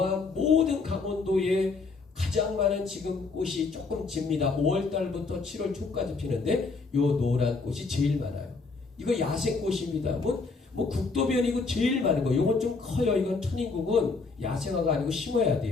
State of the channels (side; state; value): right; quieter; 4.2 dB